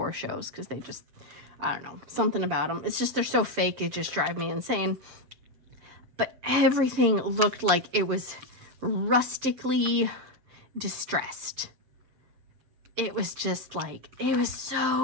shows because they just, I don't know, something about them. It's just, they're so fake, it just drives me insane. But everything looked like it was rustically distressed. It was just like, it was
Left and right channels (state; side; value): late; left; 7.6 ms